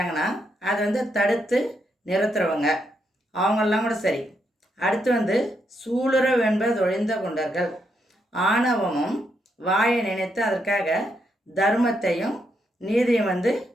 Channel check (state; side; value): normal; both; correlation 0.79